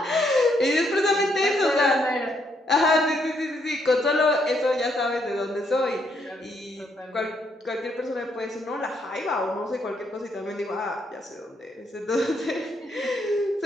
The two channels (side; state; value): both; normal; correlation 0.74